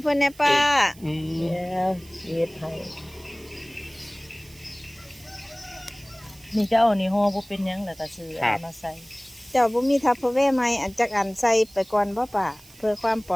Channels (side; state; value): right; noise; hiss, 23 dB below the sound